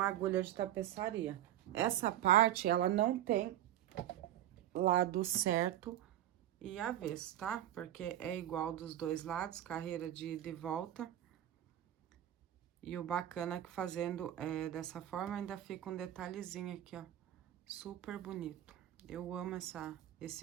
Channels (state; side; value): quieter; left; 12.2 dB